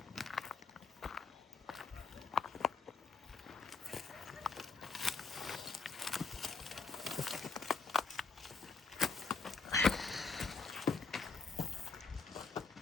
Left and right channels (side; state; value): right; quieter; 4.7 dB